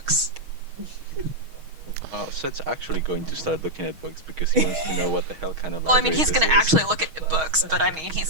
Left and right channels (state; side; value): late; left; 6.3 ms